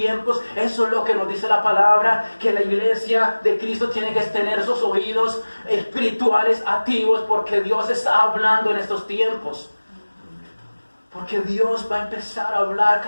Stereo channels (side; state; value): both; inverted; correlation -1.00